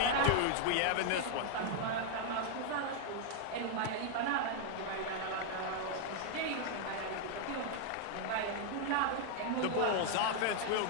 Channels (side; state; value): both; different; correlation 0.00